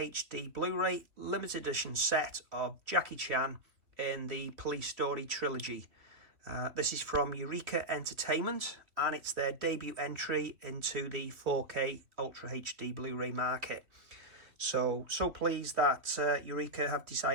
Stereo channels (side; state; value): left; late; 2.9 ms